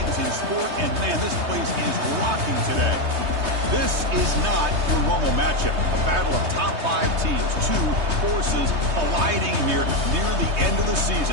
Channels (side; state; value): left; late; 3.2 ms